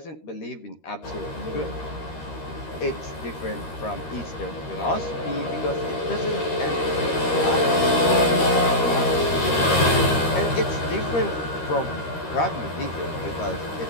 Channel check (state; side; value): late; right; 13 ms